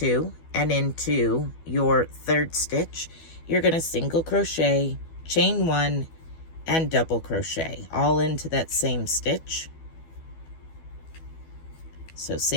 and into your third stitch you're going to single crochet, chain 1, and double crochet all into that same stitch. So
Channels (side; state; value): right; late; 12 ms